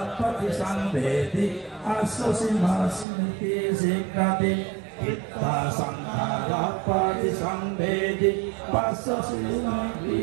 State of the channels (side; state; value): left; drops out; at 3.1 s